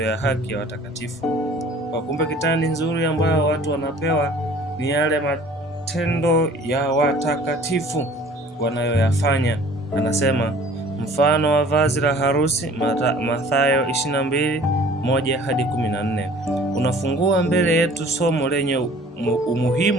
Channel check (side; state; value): both; normal; correlation 0.50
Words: ya haki ya watakatifu. Kwa kumbe kitani nzuri ambayo watu wanapewa ni yale matendo ya watakatifu wanayoyafanya. Anasema mfano wa vazi la harusi, Mathayo 22:1 hadi 14. Unafungua mbele yetu somo lenye